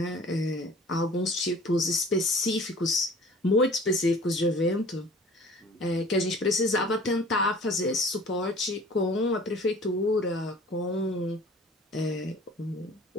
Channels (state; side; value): normal; both; correlation 0.47